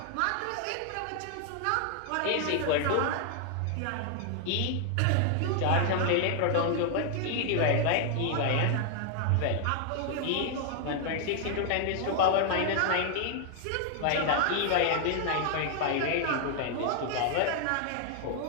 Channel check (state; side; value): different; both; correlation 0.00